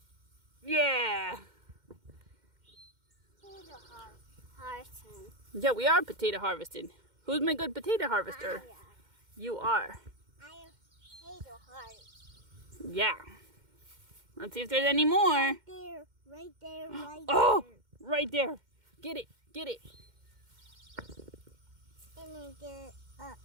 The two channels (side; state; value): left; late; 2.1 ms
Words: Yeah. Potato harvesting. Yeah, we are potato harvesting. Who's my good potato harvester? I am. You are. I am potato harvester. Yeah. Let's see if there's any more. There, right there, right Oh, there. right there. Get it, get it. And then get it up.